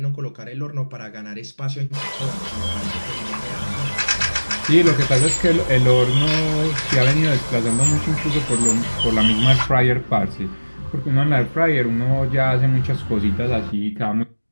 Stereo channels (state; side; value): inverted; both; correlation -1.00